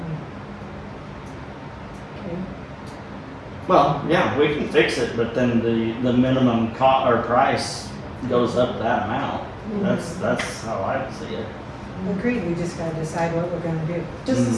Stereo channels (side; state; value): both; identical; correlation 1.00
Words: Okay. Well, yeah, we can fix it, but then the minimum or price goes up that amount. That's how I see it. Agreed, we just gotta decide what we're gonna do. Does the